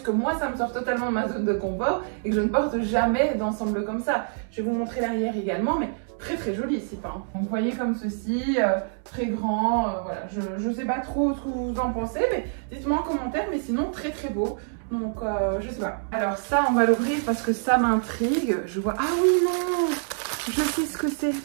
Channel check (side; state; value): left; silent; 60 dB below the other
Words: que moi, ça me sort totalement de ma zone de confort et que je ne porte jamais d'ensemble comme ça. Je vais vous montrer l'arrière également, mais très très joli ici, hein. Donc vous voyez comme ceci, très grand, voilà, je sais pas trop ce que vous en pensez, mais dites-moi en commentaire, mais sinon très très beau. Donc je sais pas. Alors ça on va l'ouvrir parce que ça m'intrigue. Je vois, ah oui non, je sais ce que c'est.